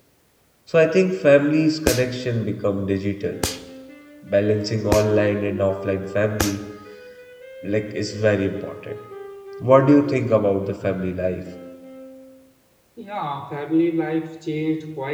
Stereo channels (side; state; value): both; identical; correlation 1.00